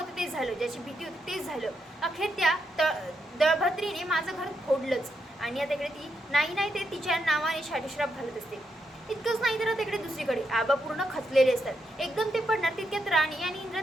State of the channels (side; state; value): both; normal; correlation 0.81